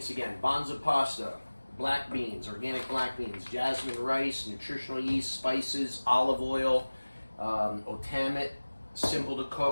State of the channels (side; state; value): both; inverted; correlation -1.00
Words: again: Banza pasta, black beans, organic black beans, jasmine rice, nutritional yeast, spices, olive oil, Otamit, simple to